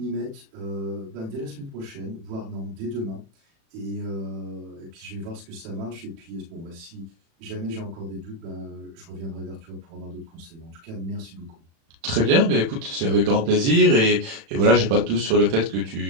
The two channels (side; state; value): left; late; 36 ms